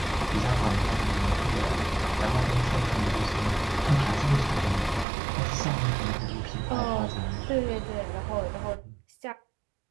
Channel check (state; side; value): drops out; left; at 5.1 s